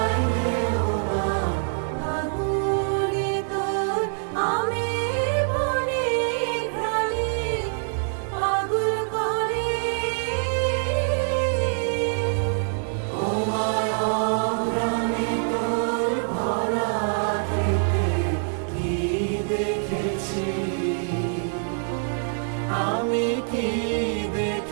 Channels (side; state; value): left; silent; 62 dB below the other